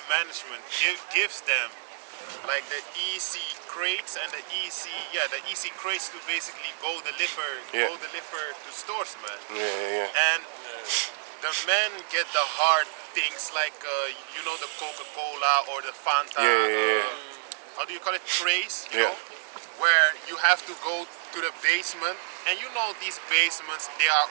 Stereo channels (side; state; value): left; silent; 59 dB below the other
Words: management, gives them like the EC crates and the EC crates to basically go deliver to stores, man. Yeah. And the men get the hard things like the Coca-Cola or the Fanta. Yeah. How do you call it? Trays, you Yeah. know, where you have to go to the basement, and you know these basements, they are